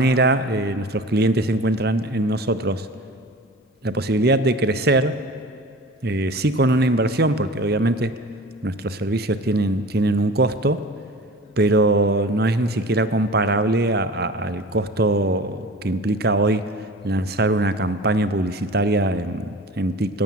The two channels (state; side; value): normal; both; correlation 0.39